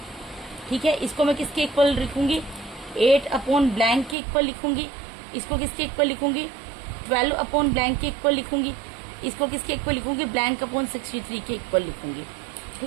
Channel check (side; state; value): left; drops out; at 4.2 s